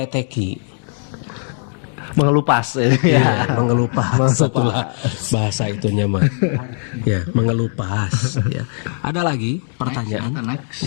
Mengelupas Ya, mengelupas. Itulah bahasa itunya mah. Ya, mengelupas ya. Ada lagi pertanyaan? Next.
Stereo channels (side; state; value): right; silent; 59 dB below the other